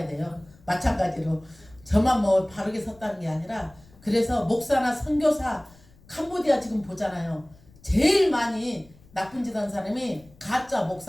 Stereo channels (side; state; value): left; noise; rumble, 26 dB below the sound